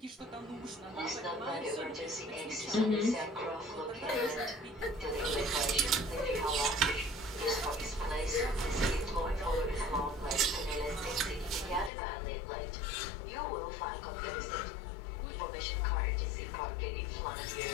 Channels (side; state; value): right; drops out; at 11.9 s